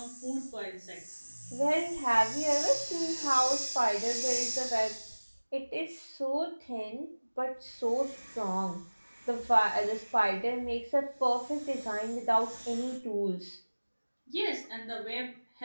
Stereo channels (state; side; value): inverted; both; correlation -1.00